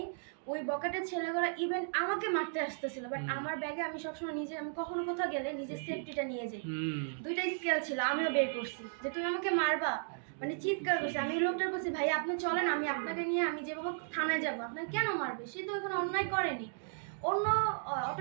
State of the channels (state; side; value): silent; left; digital silence